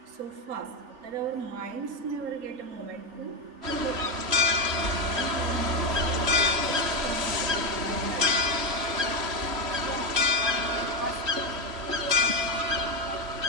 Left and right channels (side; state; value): left; late; 3.1 ms